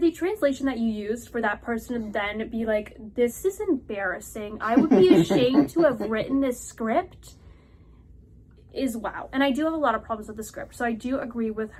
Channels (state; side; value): identical; both; correlation 1.00